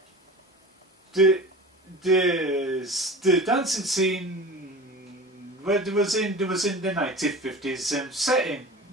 The dancing scene, well, there was in the 1950s setting.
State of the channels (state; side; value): normal; both; correlation 0.36